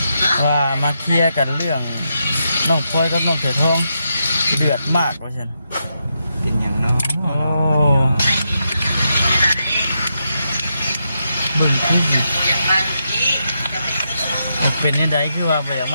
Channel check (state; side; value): inverted; both; correlation -0.83